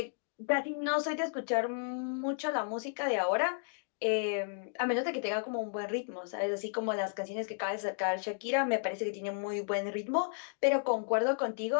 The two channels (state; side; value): silent; right; digital silence